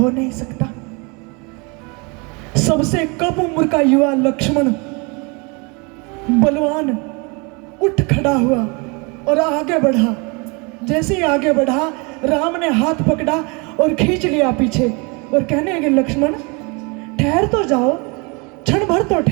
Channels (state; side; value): quieter; left; 30.2 dB